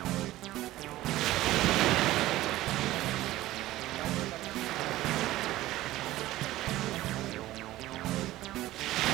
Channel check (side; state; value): left; quieter; 16.1 dB